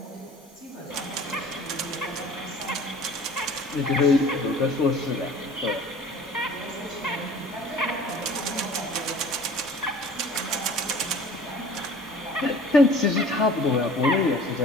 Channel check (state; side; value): normal; both; correlation 0.47